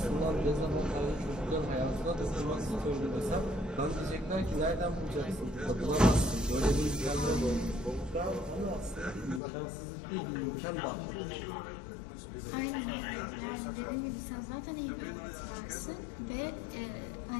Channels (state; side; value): drops out; right; at 9.4 s